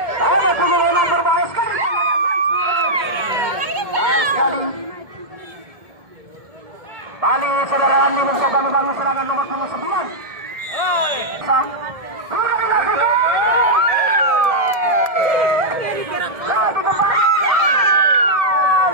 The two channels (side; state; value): left; late; 1.7 ms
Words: Nomor punggung 6 berbahaya sekali. Bahaya sekali. Kembali saudara Andi mencoba membangun serangan nomor punggung 9.